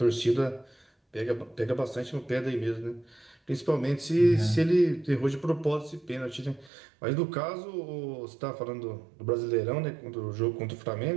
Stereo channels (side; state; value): left; drops out; at 6.7 s